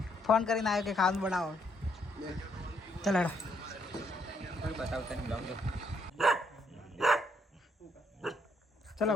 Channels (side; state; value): both; normal; correlation 0.72